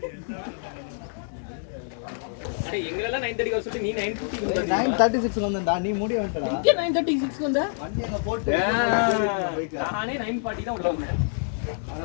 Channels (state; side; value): silent; right; 61 dB below the other